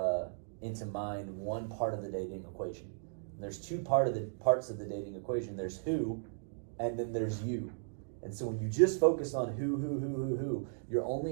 mind one part of the dating equation. There's two parts of the dating equation. There's who, and then there's you. And so when you just focus on who, you're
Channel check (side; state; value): left; silent; digital silence